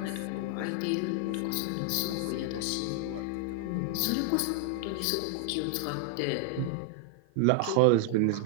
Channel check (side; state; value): both; different; correlation 0.00